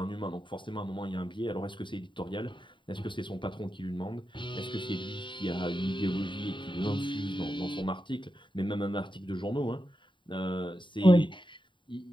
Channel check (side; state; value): right; late; 0.23 ms